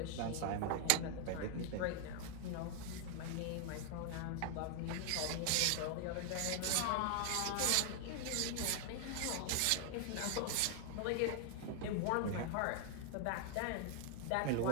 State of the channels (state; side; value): different; both; correlation 0.00